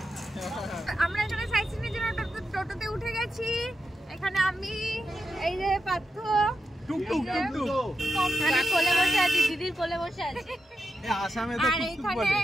আমরা এখানে সাইট সিনের জন্য টোটোতে উঠে গেছি। এখানে আমি, এই যে পার্থ, কোলে বসে আছি, দিদির কোলে বসে আছি, আর এখানে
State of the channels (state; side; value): normal; both; correlation 0.87